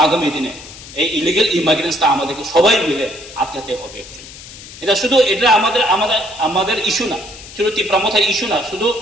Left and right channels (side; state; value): left; noise; hiss, 16 dB below the sound